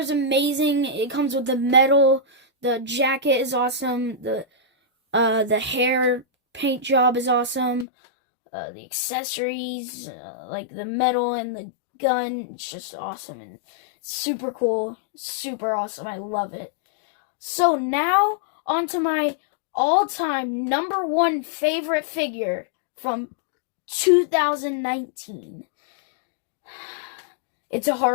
amazing. It comes with the medal. The jacket is awesome. The hair paint job is awesome. The accessories, like the medal and the gun, it's just awesome and super cool. Super awesome. I love it. So now, on to my all-time number one favorite figure from 2019. It's a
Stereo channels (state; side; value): drops out; right; at 7.9 s